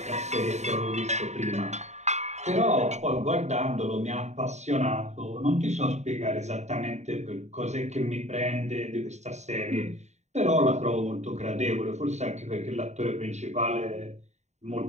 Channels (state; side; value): late; left; 0.33 ms